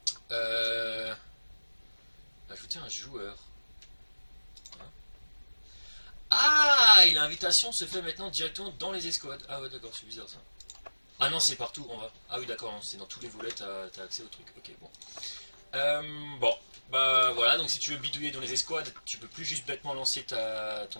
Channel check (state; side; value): inverted; both; correlation -1.00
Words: Euh, Ajouter un joueur. Ah, et l'invitation se fait maintenant directement dans les escouades. Ah ouais d'accord, c'est bizarre ça. Ah non, c'est partout en bas. Ah oui, d'accord, c'est dans tous les volets, t'as accès au truc. Ok, bon. Bon, bah voilà, donc si tu veux bidouiller dans les escouades, tu peux plus juste bêtement lancer ton